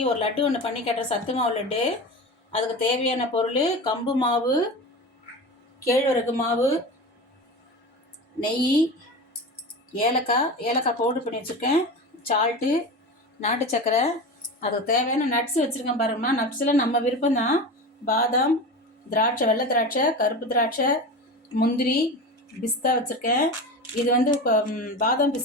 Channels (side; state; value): both; normal; correlation 0.28